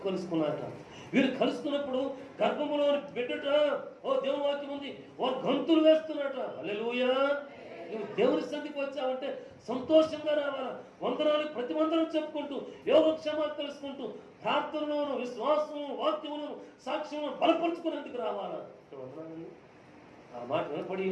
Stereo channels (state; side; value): identical; both; correlation 1.00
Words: కలుసుకున్నారట. వీరు కలుసుకున్నప్పుడు గర్భములోని బిడ్డట దేవుని వాక్యం ఉంది, వారు గంతులు వేస్తున్నట. హల్లెలూయా! నువ్వు దేవుని సన్నిధికి వచ్చావంటే సంతోషంగా రావాలా. వందనాలు ప్రతి వందనం చెప్పుకుంటూ, యోగక్షేమాలు తెలుసుకుంటూ, ప్రార్థనలోను విశ్వాసము వాక్యములను సాక్ష్యమును బలపరుచుకునేందుకు రావాలా. వందనాలండి. ఆ మాట